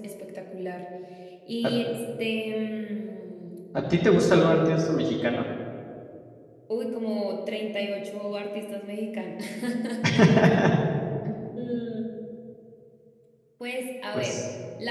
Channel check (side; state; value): both; identical; correlation 1.00